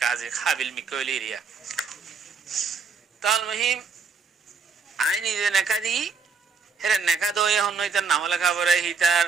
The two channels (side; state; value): left; quieter; 5.1 dB